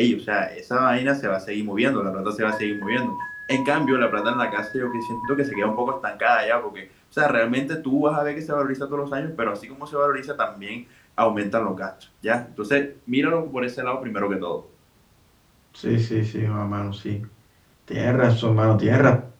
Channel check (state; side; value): identical; both; correlation 1.00